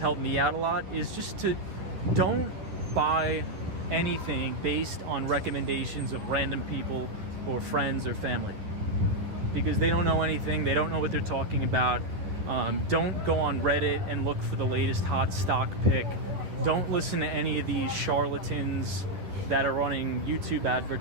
me out a lot, is just to don't buy anything based on recommendations of random people or friends or family, because they don't know anything. They don't know what they're talking about. Don't go on Reddit and look for the latest hot stock pick. Don't listen to any of these charlatans that are running YouTube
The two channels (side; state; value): left; late; 10 ms